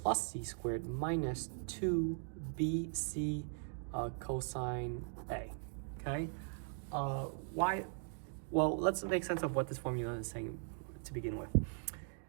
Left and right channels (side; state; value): left; silent; 51 dB below the other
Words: c squared minus 2bc cosine a, okay? Why? Well, let's make sense of what this formula is saying to begin with.